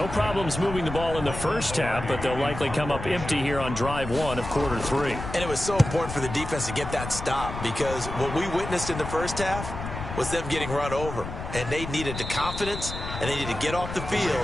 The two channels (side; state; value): left; noise; rumble, 8 dB below the sound